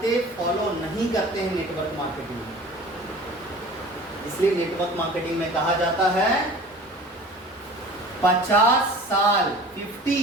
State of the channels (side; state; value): both; normal; correlation 0.42